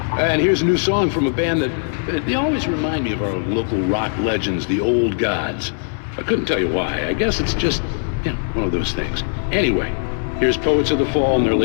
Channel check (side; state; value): right; silent; digital silence